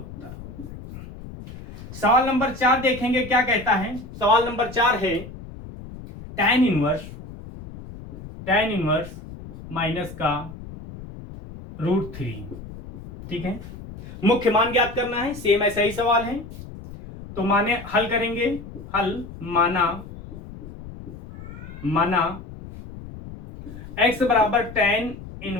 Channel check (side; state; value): left; noise; rumble, 14 dB below the sound